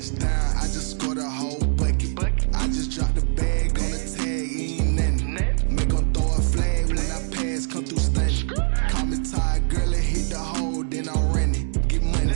I just scored a whole bucket. I just dropped the bag on the tag, ain't nothing. Make them throw a flag when I pass, come through stunning. Call me tired, girl, and hit the hole, then I'm running. Get money,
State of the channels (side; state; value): left; silent; digital silence